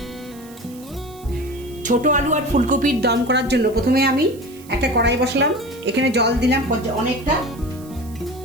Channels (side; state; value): right; noise; hiss, 22 dB below the sound